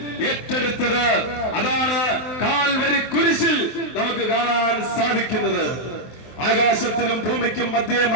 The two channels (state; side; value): late; right; 24 ms